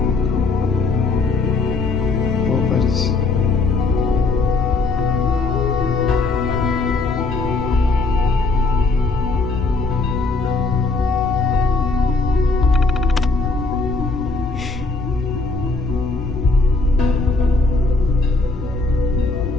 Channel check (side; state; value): right; quieter; 3.6 dB